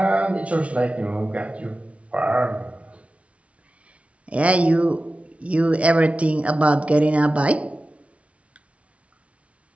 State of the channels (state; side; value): late; left; 0.063 ms